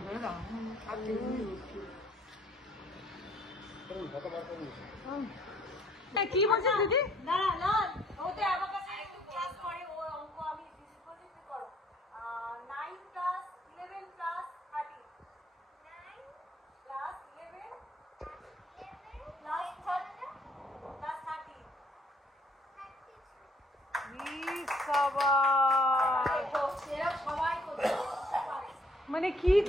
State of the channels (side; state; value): both; normal; correlation 0.62